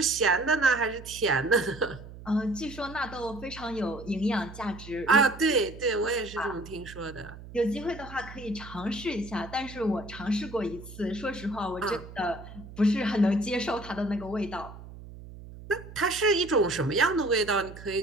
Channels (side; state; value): right; noise; hum, 15 dB below the sound